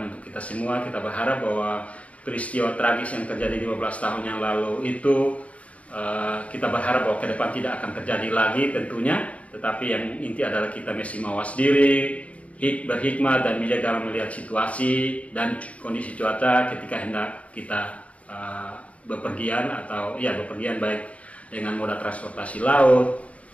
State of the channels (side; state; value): right; late; 0.066 ms